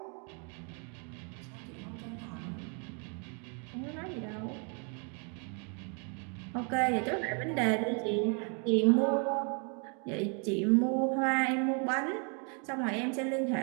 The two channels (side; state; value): left; quieter; 38.3 dB